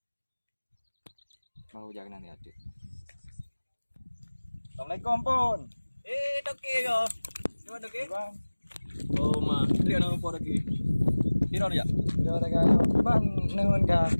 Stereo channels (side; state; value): both; inverted; correlation -1.00